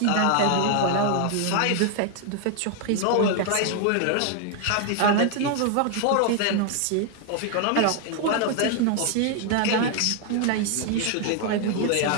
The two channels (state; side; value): different; both; correlation 0.00